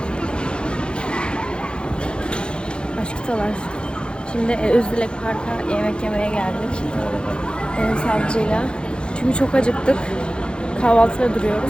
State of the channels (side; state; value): right; late; 0.052 ms